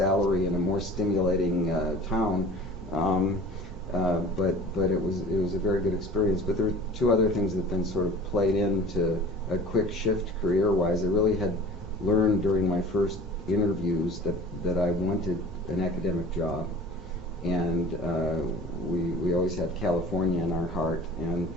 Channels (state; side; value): normal; both; correlation 0.42